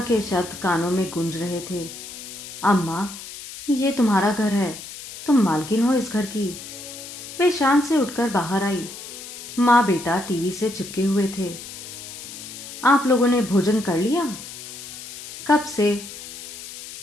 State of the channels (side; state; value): left; noise; hiss, 12 dB below the sound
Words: के शब्द कानों में गूंज रहे थे। अम्मा, ये तुम्हारा घर है, तुम मालकिन हो इस घर की। वे शान से उठकर बाहर आई। माँ बेटा टीवी से चिपके हुए थे। आप लोगों ने भोजन कर लिया? कब से?